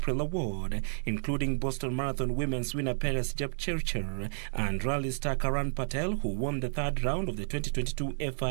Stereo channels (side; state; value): left; silent; digital silence